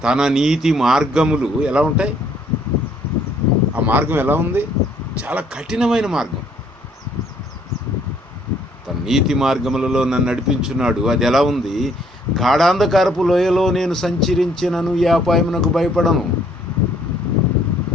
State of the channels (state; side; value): normal; both; correlation 0.65